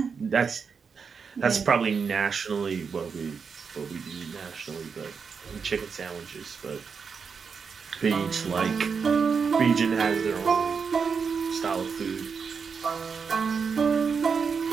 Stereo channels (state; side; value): quieter; left; 5.8 dB